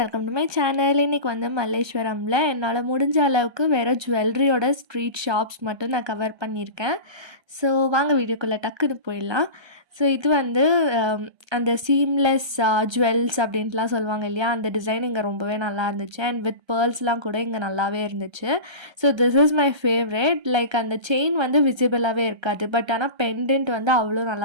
welcome to my channel. இன்றைக்கி வந்து மல்லேஸ்வரமில் என்னால் முடிஞ்ச அளவுக்கு வேறு ஜுவல்லரியோட ஸ்ட்ரீட் ஷாப்ஸ் மட்டும் நான் கவர் பண்ணியிருக்கேன். ஸோ வாங்க வீடியோக்குள்ளே டக்குன்னு போயிடலாம். ஸோ இது வந்து அந்த சீம்லெஸ் ஜுவல்ஸ் அப்படின்ட்டுலாம் சொல்லுவாங்க இல்லையா, அந்த டிசைன் இங்கே ரொம்பவே நல்லா இருந்துச்சு. அண்ட் வித் பேர்ல்ஸ்லாம் கூட இங்கே நல்லாவே இருந்துச்சு. So this is my favourite. Like அந்த செயின் வந்து விசிபிளாகவே இருக்காது, பட் ஆனால் பெண்டன்ட் வந்து அவ்வளோ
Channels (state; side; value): late; left; 1.3 ms